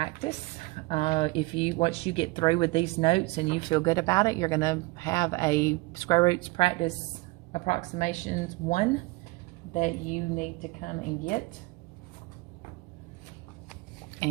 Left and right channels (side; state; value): left; quieter; 23.6 dB